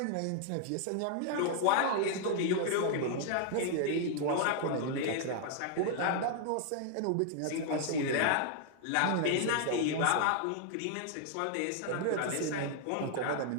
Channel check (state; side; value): different; both; correlation -0.01